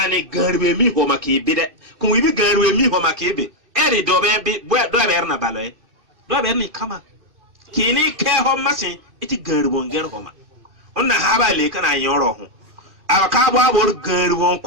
غربي مي هو مكيبي كم يبي غربي مي هو مكيبي إري دوبي دوبيرنا بالوي دوبيرني كما كيني كيهو مسين إتي غربون غرهما أنا هابا ليكنا يوروهم أراكابو أبور غربون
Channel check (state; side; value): late; left; 2.6 ms